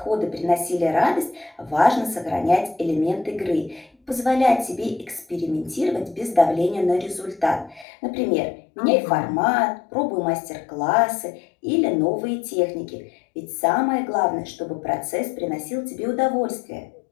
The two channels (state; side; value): drops out; right; at 7.9 s